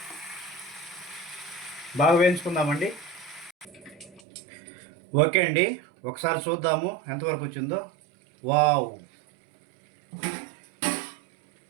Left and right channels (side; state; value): left; drops out; at 4.2 s